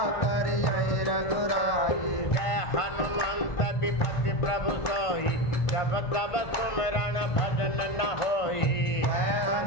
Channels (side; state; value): right; late; 1.5 ms